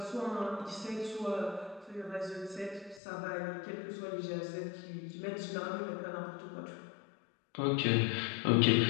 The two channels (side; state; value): right; drops out; at 3.0 s